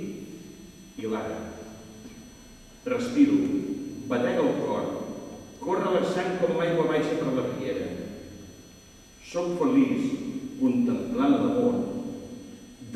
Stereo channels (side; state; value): both; identical; correlation 1.00